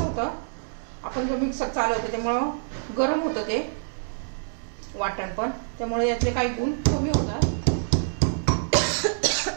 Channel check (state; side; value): silent; left; 61 dB below the other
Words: होतं, आपण जर मिक्सर चालवतो त्यामुळं गरम होतं ते वाटण पण, त्यामुळे यातले काही गुण कमी होतात.